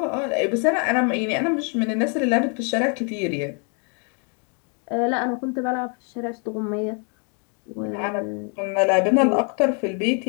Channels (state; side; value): quieter; right; 38.7 dB